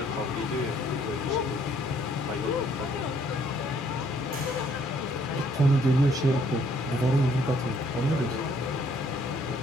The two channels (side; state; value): both; normal; correlation 0.65